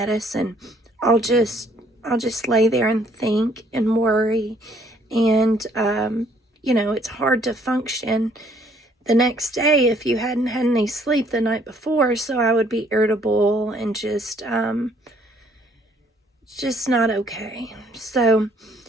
I'll just lay there and think and worry, and it's hard to function the next day if you hadn't had any sleep the night before. So I would be irritable and just not okay. So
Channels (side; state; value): both; normal; correlation 0.63